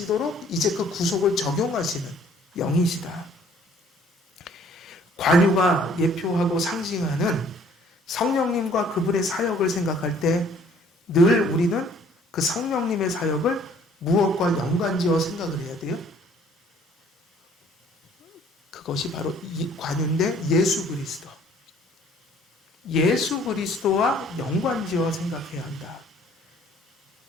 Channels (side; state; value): both; normal; correlation 0.58